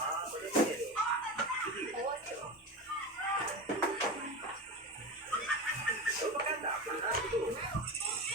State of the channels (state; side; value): normal; both; correlation 0.24